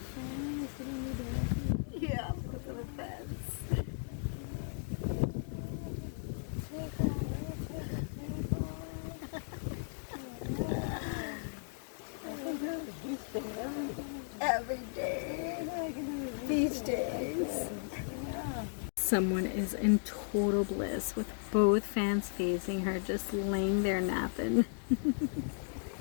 Yeah, look at the fence. Every day. Beach days. Someone is in total bliss with both fans facing her, just laying there napping.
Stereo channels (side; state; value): right; silent; digital silence